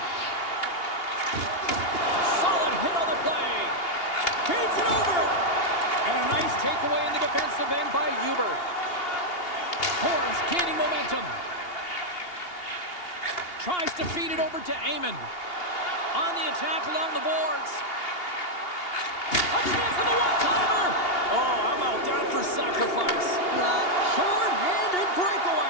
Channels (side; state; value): right; late; 2.8 ms